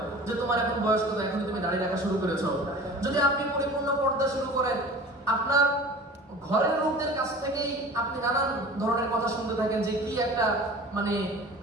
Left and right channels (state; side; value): normal; both; correlation 0.40